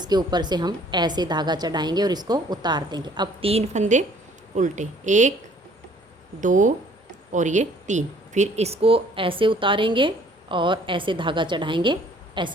ऊपर से हम ऐसे धागा चढ़ाएंगे और इसको उतार देंगे। अब 3 फंदे उल्टे, 1 2 और ये 3। फिर इसको ऐसे उतारेंगे और ऐसे धागा चढ़ाएंगे,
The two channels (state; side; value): normal; both; correlation 0.58